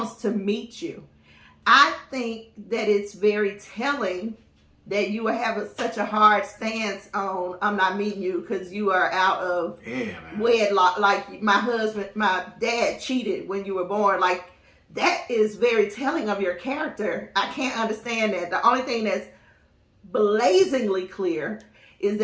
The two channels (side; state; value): both; identical; correlation 1.00